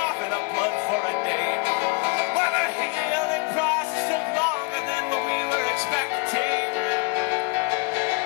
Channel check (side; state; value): right; quieter; 30.2 dB